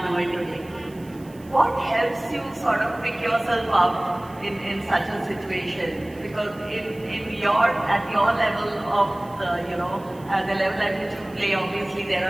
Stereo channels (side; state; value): right; noise; hiss, 26 dB below the sound